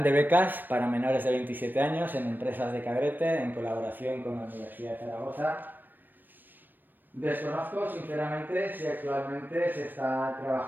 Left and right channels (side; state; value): left; late; 0.092 ms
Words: de becas para menores de 27 años en empresas de Cabrete en colaboración con la Universidad de Zaragoza. Desconozco sinceramente si actualmente se está